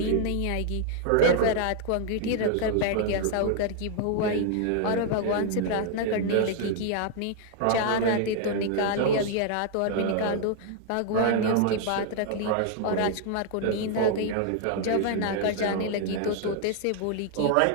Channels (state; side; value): different; both; correlation 0.00